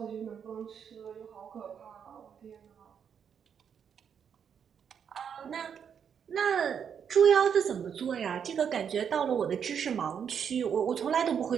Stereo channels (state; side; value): quieter; left; 7.6 dB